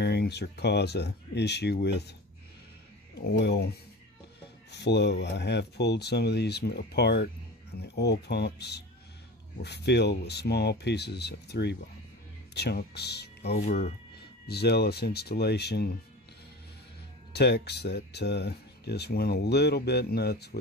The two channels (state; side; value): normal; both; correlation 0.34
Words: or cause a issue with oil flow. I have pulled some of these apart, and the oil pumps were filled with small pieces of 3-bond chunks over zealous installation techs that just went a little bit nuts